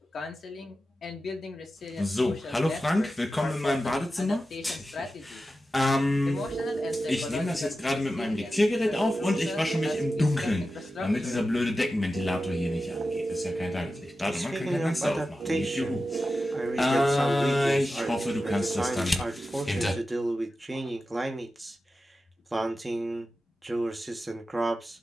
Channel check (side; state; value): both; normal; correlation 0.92